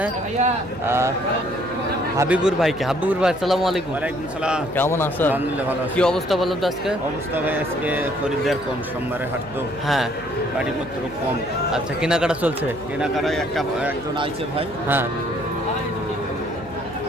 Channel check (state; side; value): noise; left; hum, 21 dB below the sound